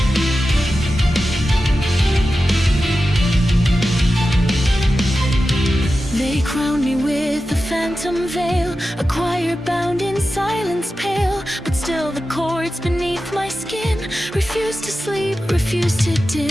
They crowned me with a phantom veil, a choir bound in silence pale. But still the chords beneath my skin refused to sleep, refused to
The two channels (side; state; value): both; normal; correlation 0.93